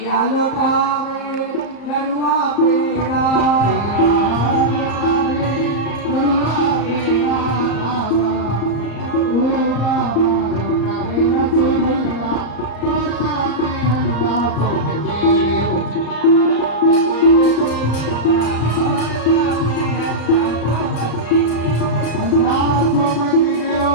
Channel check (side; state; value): right; late; 34 ms